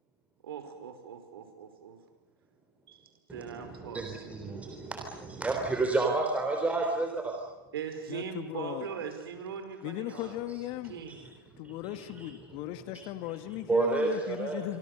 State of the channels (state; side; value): normal; both; correlation 0.42